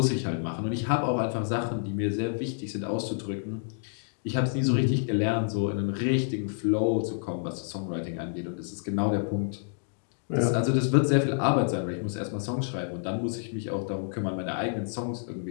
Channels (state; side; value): silent; right; digital silence